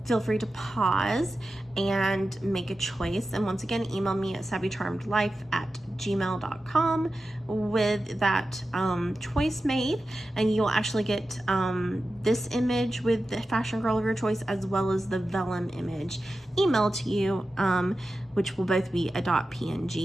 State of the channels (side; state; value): both; normal; correlation 0.93